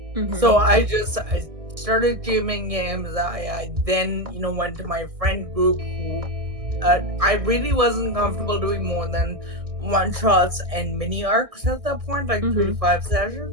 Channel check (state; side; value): late; left; 1.6 ms